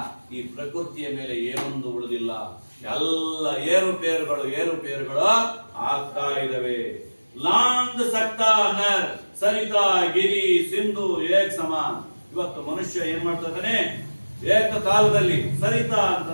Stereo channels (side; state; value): both; inverted; correlation -1.00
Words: ಈ ಪ್ರಕೃತಿಯ ಮೇಲೆ ಏನೊಂದು ಉಳಿದಿಲ್ಲ, ಎಲ್ಲ ಏರುಪೇರುಗಳು ಆಗ್ತಾ ಇದಾವೆ. ಲಾಂಗ್ ಸಕ್ತಾ ನರ್ ಸರಿತಾ ಗಿರಿ ಸಿಂಧು ಏಕ್ ಸಮಾನ್. ಇವತ್ತು ಮನುಷ್ಯ ಏನ್ ಮಾಡ್ತಾ ಇದ್ದಾನೆ, ಏಕಕಾಲದಲ್ಲಿ ಸರಿತಾ